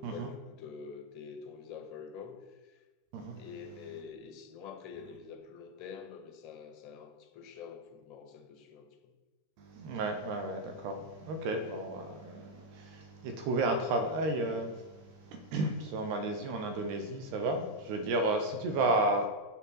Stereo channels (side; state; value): left; late; 13 ms